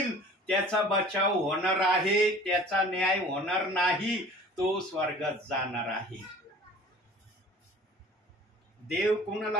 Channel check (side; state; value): both; normal; correlation 0.45